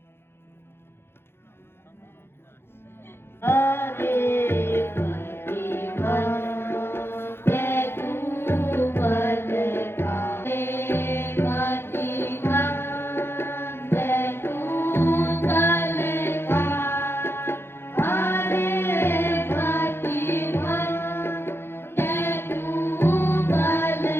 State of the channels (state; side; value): late; right; 0.11 ms